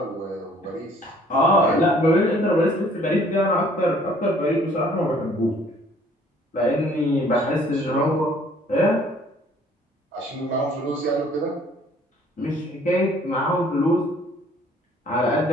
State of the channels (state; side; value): normal; both; correlation 0.58